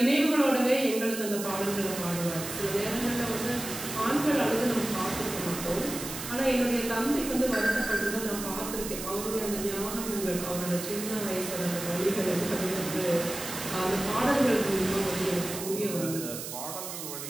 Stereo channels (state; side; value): noise; right; hiss, 8 dB below the sound